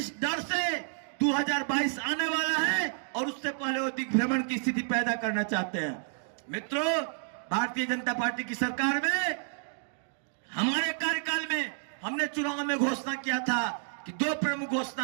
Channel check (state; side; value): silent; left; digital silence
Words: डर से 2022 आने वाला है और उससे पहले वो दिग्भ्रमण की स्थिति पैदा करना चाहते हैं। मित्रों, भारतीय जनता पार्टी की सरकार में हमारे कार्यकाल में हमने चुनाव में घोषणा किया था कि 2 प्रमुख